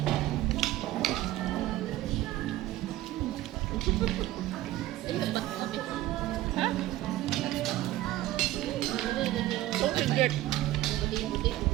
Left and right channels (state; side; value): quieter; left; 15.4 dB